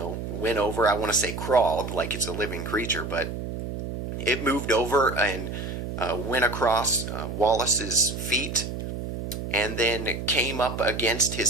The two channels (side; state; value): right; noise; hum, 6 dB below the sound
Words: went over, I want to say crawled, like it's a living creature, but it moved over and went across Wallace's feet, and then came up against